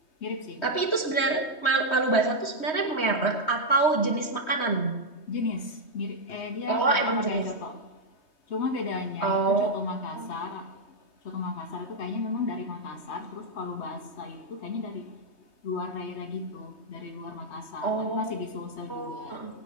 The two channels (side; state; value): right; late; 3.2 ms